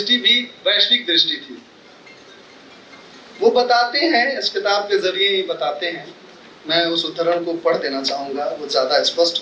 भी वैश्विक दृष्टि थी। वो बताते हैं, इस किताब के जरिए ही बताते हैं, मैं उस उद्धरण को पढ़ देना चाहूंगा, वो ज्यादा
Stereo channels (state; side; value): identical; both; correlation 1.00